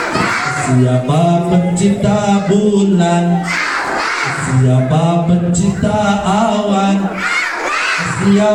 Siapa pencipta bulan? Siapa pencipta awan?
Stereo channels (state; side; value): identical; both; correlation 1.00